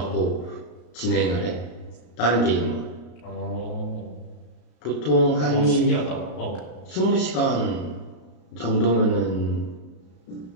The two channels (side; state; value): right; late; 33 ms